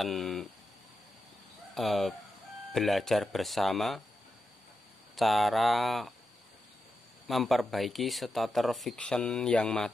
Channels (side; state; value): both; normal; correlation 0.88